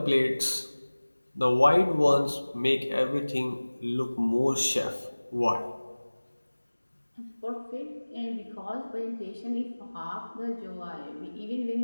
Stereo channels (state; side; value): inverted; both; correlation -1.00